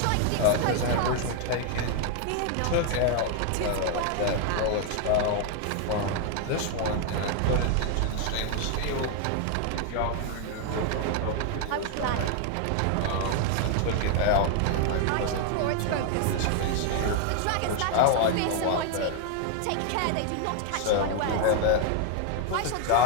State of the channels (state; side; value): different; both; correlation 0.00